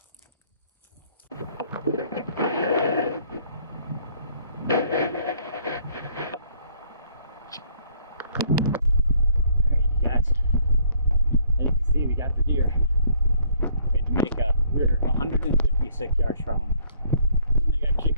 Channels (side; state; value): both; inverted; correlation -0.61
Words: Alright, you guys. As you can see, we got the deer. We had to make we were 156 yards from them when they got